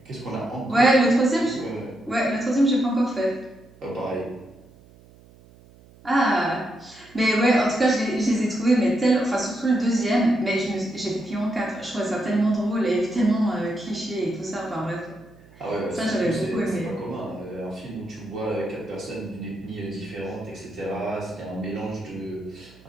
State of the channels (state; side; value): noise; right; hum, 25 dB below the sound